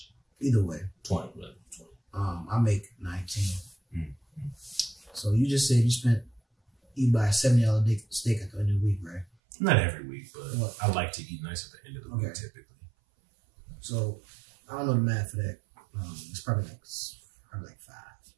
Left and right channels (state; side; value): drops out; left; at 9.2 s